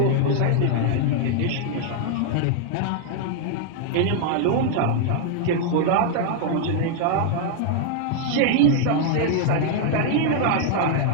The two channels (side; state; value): both; different; correlation 0.00